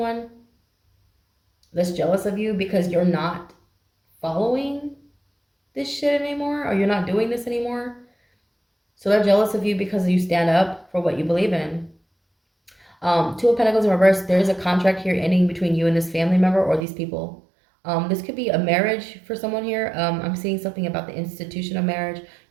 that's jealous of you because you're not following this shit anymore, or you're not doing this anymore. So they're jealous of you because you stand up for what you believe in. Two of Pentacles in reverse. There's a contract here ending between you and this family member or these people. This could be a marriage for someone here. I'm seeing something about the institution of marriage.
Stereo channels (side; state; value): left; drops out; at 16.9 s